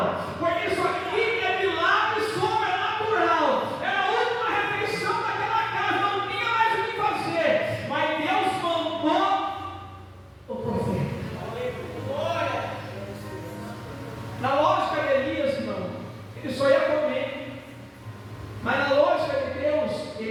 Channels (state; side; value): identical; both; correlation 1.00